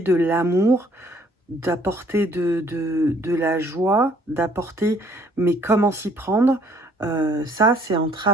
l'amour, d'apporter de la joie, d'apporter, mais comment s'y prendre, ça c'est en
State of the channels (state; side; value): normal; both; correlation 0.61